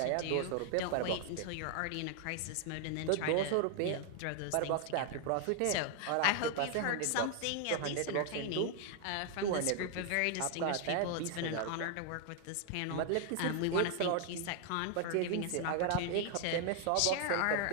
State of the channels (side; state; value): both; different; correlation 0.00